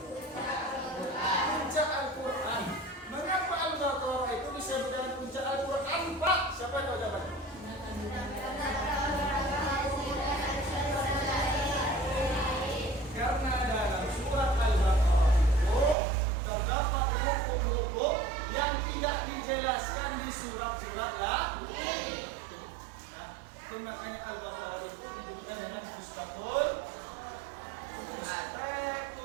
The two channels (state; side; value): drops out; left; at 16.0 s